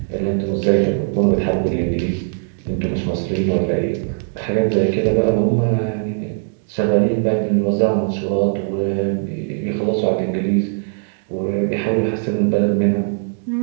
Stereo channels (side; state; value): left; silent; digital silence